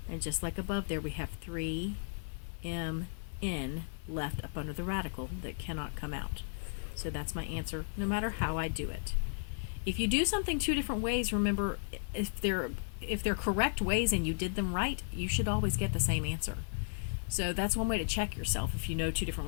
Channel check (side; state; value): right; silent; 55 dB below the other